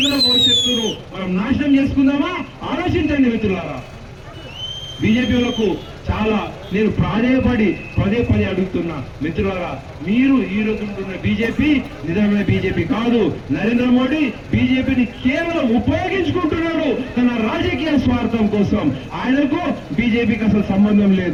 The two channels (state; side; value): identical; both; correlation 1.00